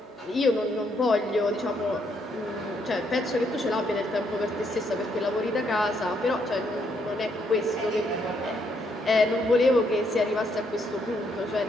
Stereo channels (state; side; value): normal; both; correlation 0.74